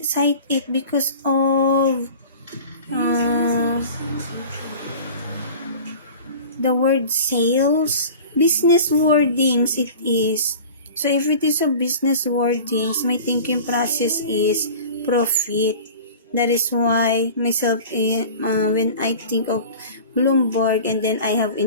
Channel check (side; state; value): both; inverted; correlation -0.39